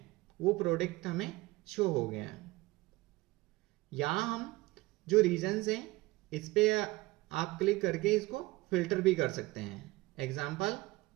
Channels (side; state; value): left; quieter; 21.0 dB